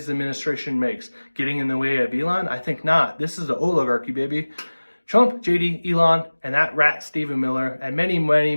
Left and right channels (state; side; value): inverted; both; correlation -1.00